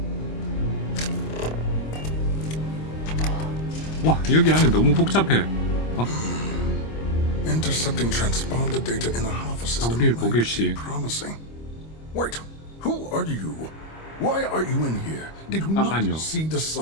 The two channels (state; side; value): late; right; 25 ms